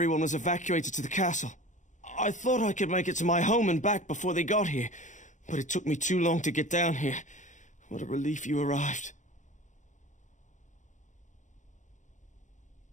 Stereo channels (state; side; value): late; right; 0.36 ms